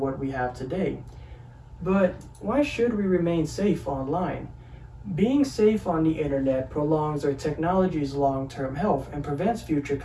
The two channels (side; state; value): both; identical; correlation 1.00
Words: we have today. But why should we remain safe online? Being safe on the internet prolongs our technology's long-term health and prevents future